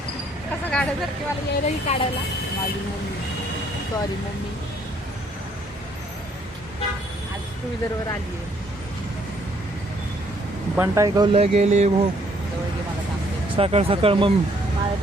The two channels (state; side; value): normal; both; correlation 0.66